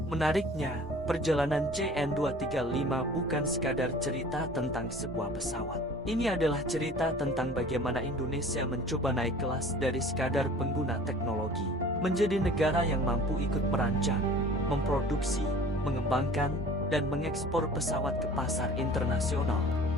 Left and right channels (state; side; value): normal; both; correlation 0.46